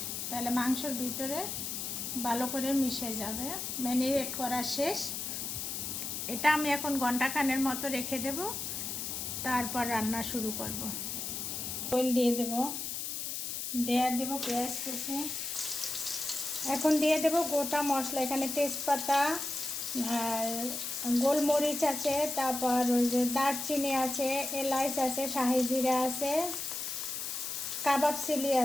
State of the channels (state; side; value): noise; left; hiss, 4 dB below the sound